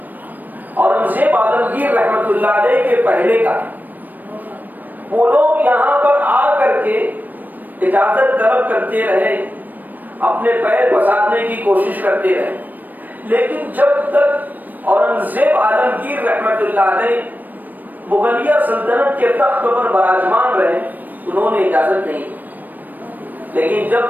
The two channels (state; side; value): late; left; 0.087 ms